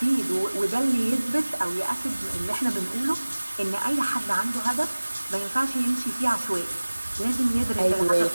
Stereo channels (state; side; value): inverted; both; correlation -1.00